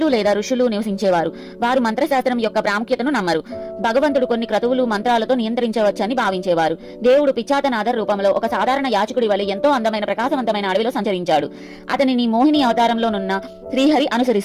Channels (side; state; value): both; identical; correlation 1.00